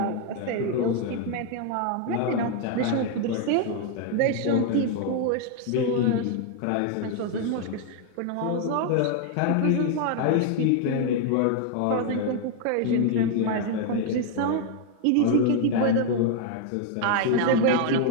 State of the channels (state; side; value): different; both; correlation 0.00